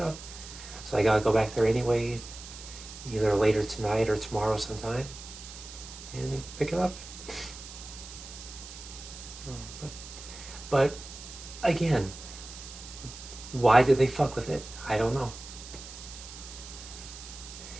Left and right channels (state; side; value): noise; right; hiss, 14 dB below the sound